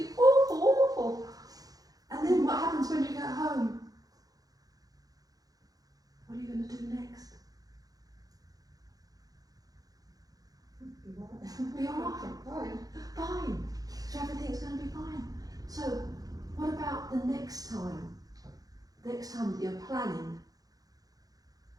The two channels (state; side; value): late; left; 0.18 ms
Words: awful, awful. And then what happens when you get home? What are you going to do next? Be alright. Fine. So everything's going to be fine. So what about the next time? Next time that you're planning.